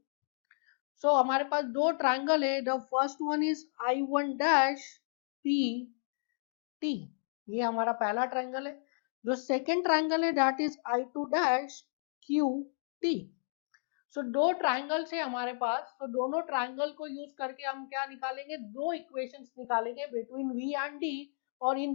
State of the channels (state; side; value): silent; right; digital silence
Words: सो हमारे पास दो ट्रायंगल है. The first one is I1 dash P T, ये हमारा पहला ट्रायंगल है. जो सेकेंड ट्रायंगल है that is I2 dash Q T. सो दो ट्रायंगल्स है हमारे पास, तो दोनों ट्रायंगल को यूज करके हम क्या निकालेंगे, दो इक्वेशंस निकालेंगे बिटवीन V एंड D. और